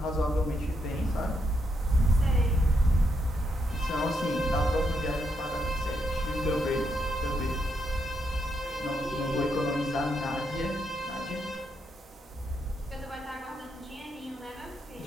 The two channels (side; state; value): both; normal; correlation 0.79